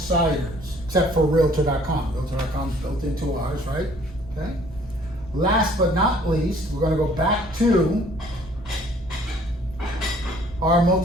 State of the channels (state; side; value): normal; both; correlation 0.57